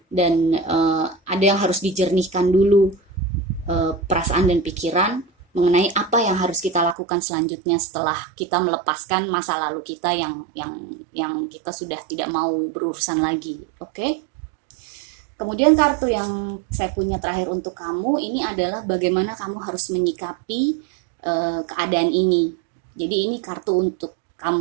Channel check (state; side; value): drops out; left; at 7.0 s